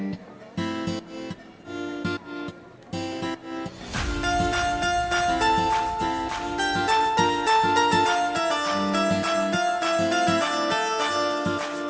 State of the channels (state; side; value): identical; both; correlation 1.00